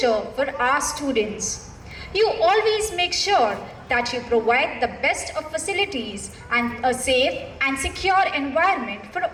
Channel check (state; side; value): identical; both; correlation 1.00